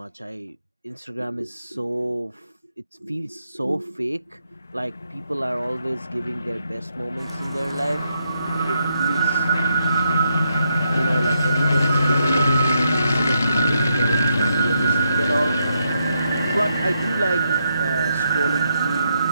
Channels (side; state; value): both; inverted; correlation -0.80